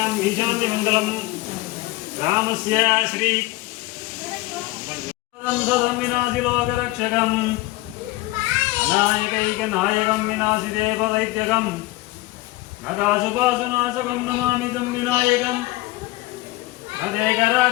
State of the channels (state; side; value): quieter; right; 19.4 dB